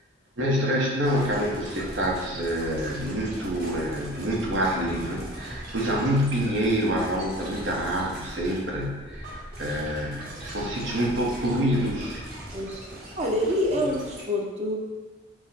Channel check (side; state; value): both; normal; correlation 0.41